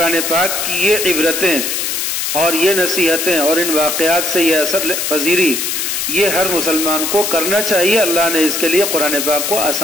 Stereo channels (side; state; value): left; noise; hiss, 1 dB below the sound